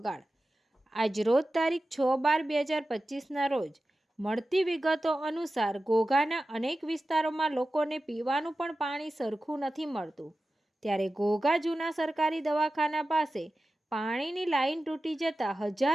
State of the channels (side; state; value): both; normal; correlation 0.94